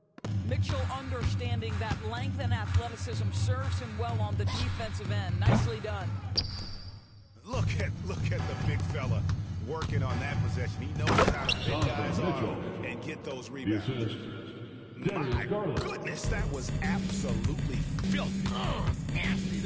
Mitchell understanding that length and athleticism serves him well on the defensive end. Nicely done. Look at the big fella working on that possession. He knows how to pick guys off and get those rebounds. My goodness, that was absolutely filthy. Oh, nasty.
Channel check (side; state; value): both; identical; correlation 1.00